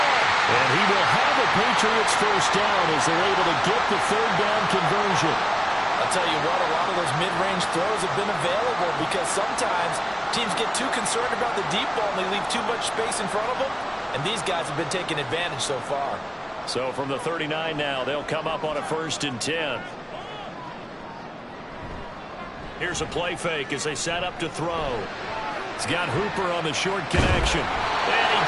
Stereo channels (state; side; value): identical; both; correlation 1.00